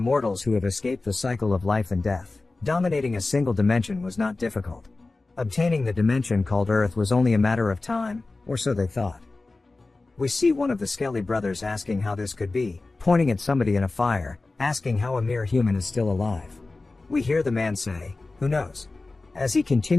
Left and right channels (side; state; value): right; quieter; 3.4 dB